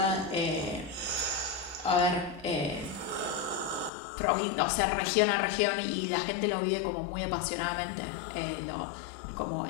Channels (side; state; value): right; drops out; at 3.9 s